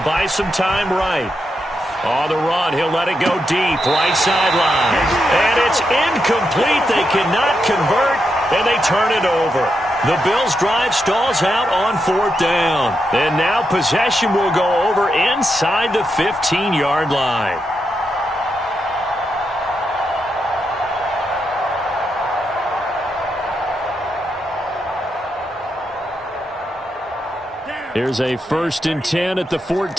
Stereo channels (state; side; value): normal; both; correlation 0.84